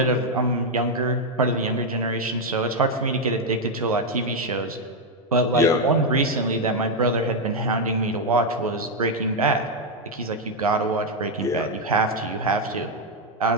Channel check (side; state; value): both; normal; correlation 0.02